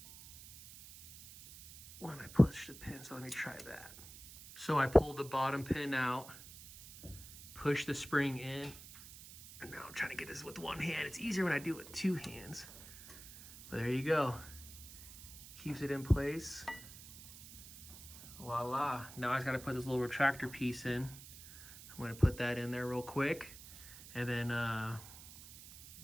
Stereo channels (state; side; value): noise; right; hiss, 16 dB below the sound